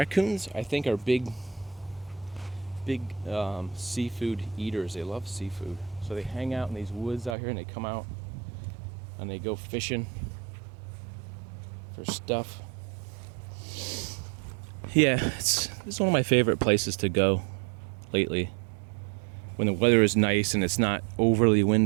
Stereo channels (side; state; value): left; drops out; at 7.4 s